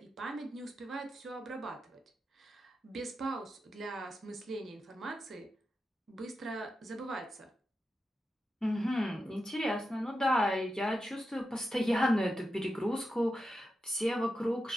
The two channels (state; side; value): normal; both; correlation 0.89